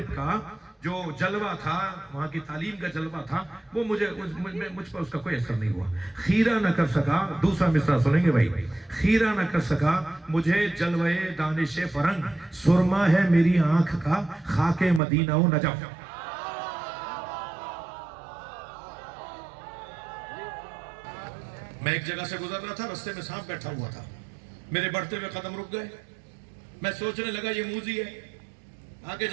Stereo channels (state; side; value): drops out; left; at 15.0 s